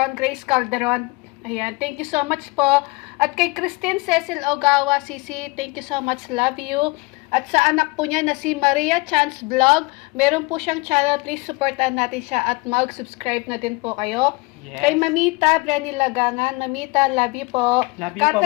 Grace Calderon. Ayan, thank you so much po. At kay Christine Cecil Ogawa, Sisi, thank you so much, love you. At sa anak po niya na si Maria Chance Vlog, meron po siyang channel, please supportan natin siya at mag-subscribe na din po kayo. Yes. Kay Mamita, Brenny Lagangan, Mamita, love you po. Love you po,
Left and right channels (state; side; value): quieter; right; 25.5 dB